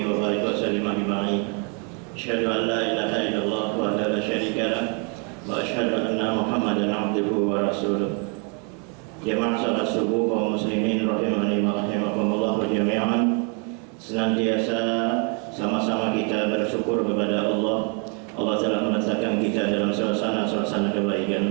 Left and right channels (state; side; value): quieter; left; 37.6 dB